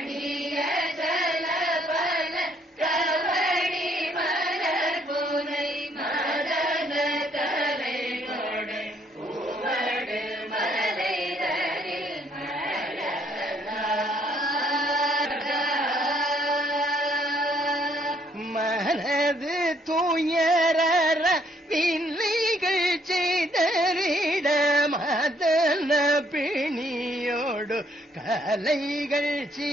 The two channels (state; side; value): normal; both; correlation 0.67